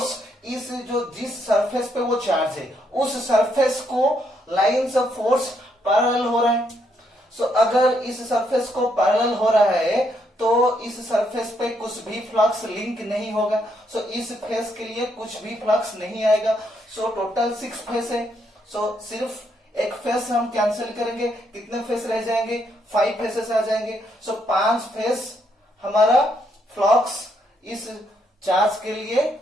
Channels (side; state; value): both; normal; correlation 0.75